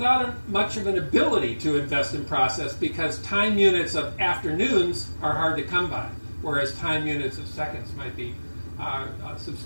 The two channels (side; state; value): both; inverted; correlation -1.00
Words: much of an ability to invest in process, because time units of afternoons are hard to come by, whereas time units of seconds might be